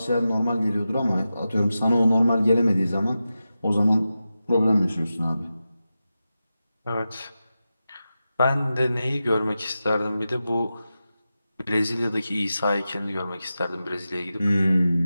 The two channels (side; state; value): both; inverted; correlation -0.92